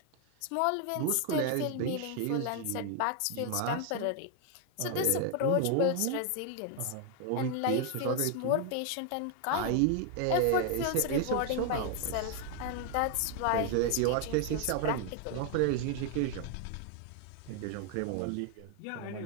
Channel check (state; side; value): different; both; correlation 0.00